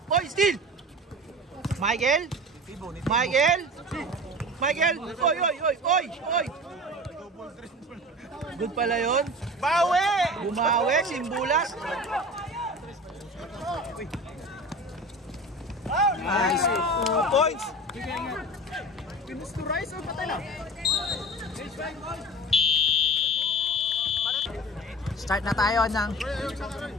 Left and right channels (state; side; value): normal; both; correlation 0.35